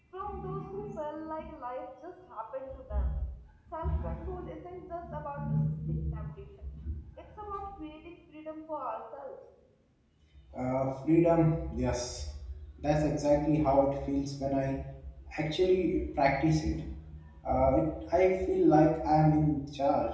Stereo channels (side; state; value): both; identical; correlation 1.00